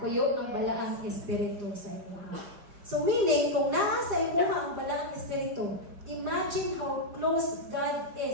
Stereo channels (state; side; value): late; left; 5.1 ms